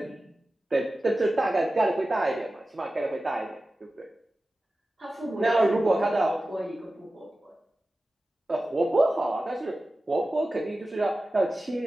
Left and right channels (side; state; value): both; normal; correlation 0.95